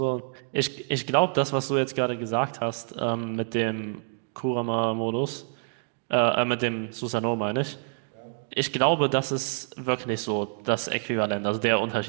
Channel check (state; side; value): silent; left; digital silence